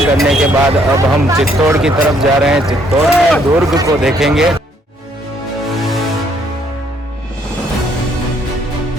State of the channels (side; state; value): both; normal; correlation 0.67